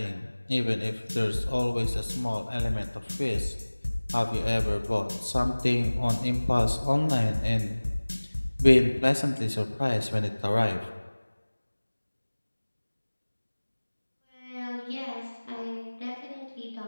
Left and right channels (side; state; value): both; inverted; correlation -1.00